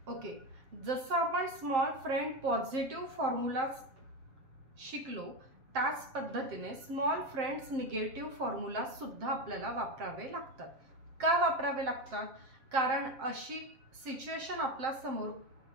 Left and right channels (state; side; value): late; left; 7.6 ms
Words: Okay, जसं आपण small friend positive formula शिकलो त्याच पद्धतीने स्मॉल फ्रेंड्स निगेटिव्ह फॉर्म्युला सुद्धा आपल्याला वापरावे लागतात. का वापरावे लागतात? कारण अशी सिच्युएशन आपल्या समोर